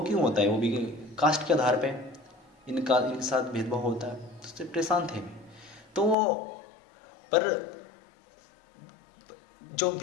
क्यों होता है, वो भी कास्ट के आधार पे इनके साथ भेदभाव होता है, तो उससे परेशान थे। तो पर जो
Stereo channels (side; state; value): right; drops out; at 6.2 s